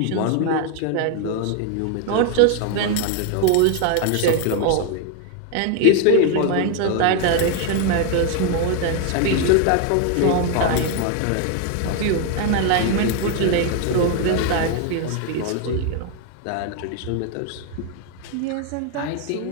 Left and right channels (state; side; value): different; both; correlation 0.01